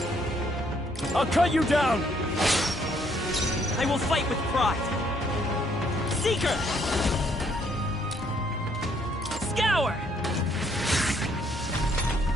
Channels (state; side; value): normal; both; correlation 0.68